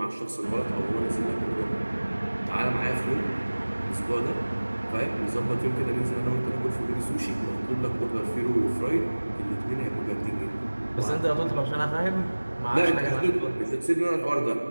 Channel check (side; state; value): both; inverted; correlation -1.00